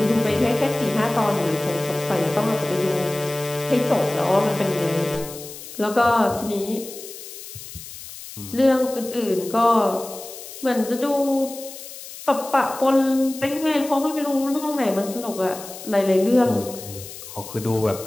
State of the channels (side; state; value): left; noise; hiss, 13 dB below the sound